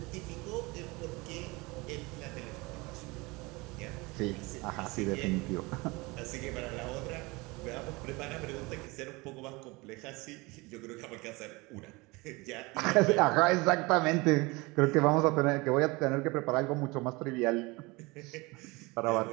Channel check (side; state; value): left; quieter; 24.5 dB